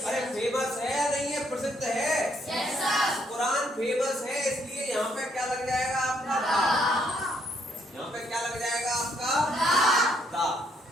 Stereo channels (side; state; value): both; normal; correlation 0.71